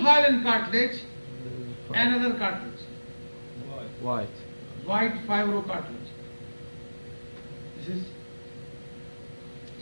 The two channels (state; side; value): inverted; both; correlation -1.00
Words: hyaline cartilage, another cartilage. White fibrocartilage. This is